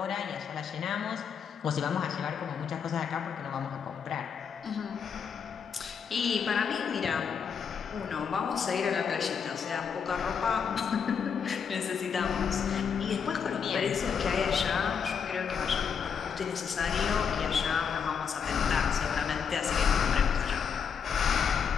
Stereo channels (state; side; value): quieter; right; 6.8 dB